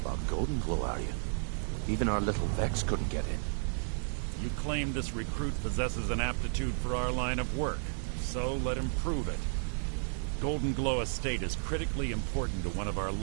Golden Glow, are you? Even our little Vex couldn't get in. You claim this recruit possesses an aptitude for our line of work, so let him prove it. Golden Glow Estate is critically important to one of our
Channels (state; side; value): silent; left; 56 dB below the other